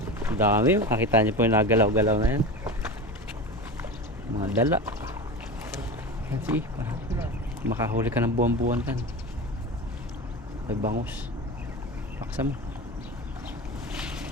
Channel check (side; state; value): both; normal; correlation 0.27